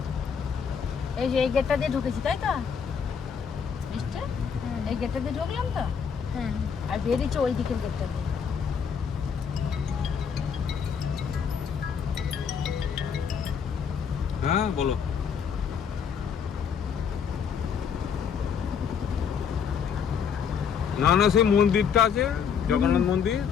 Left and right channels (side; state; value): right; quieter; 6.9 dB